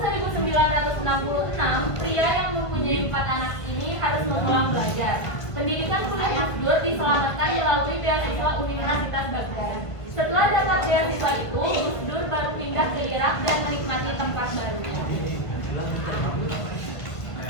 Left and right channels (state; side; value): late; right; 1.5 ms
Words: pria yang mempunyai 4 anak ini harus mengulang belajar. Pendidikan kuliah Gus Dur diselamatkan melalui beasiswa Universitas Baghdad. Setelah dapat beasiswa itu, Gus Dur baru pindah ke Irak dan menikmati tempat barunya.